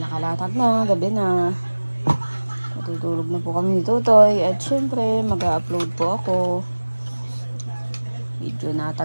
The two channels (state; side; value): inverted; both; correlation -1.00